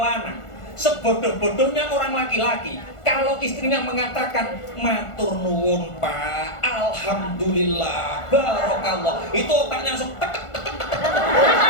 lanang, sebodoh-bodohnya orang laki-laki, kalau istrinya mengatakan matur nuwun Pak, alhamdulillah, barakallah, itu otaknya langsung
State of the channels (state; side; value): late; right; 1.5 ms